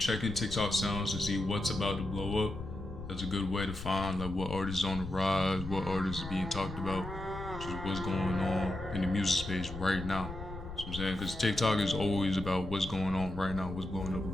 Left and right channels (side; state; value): left; noise; rumble, 11 dB below the sound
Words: TikTok sounds to see what's about to blow up. That's a good way to find like what artists on the rise, what artists are being talked about, just what's going on in the music space right now. So I'm saying, because TikTok is always about what's going on right now, what's blowing up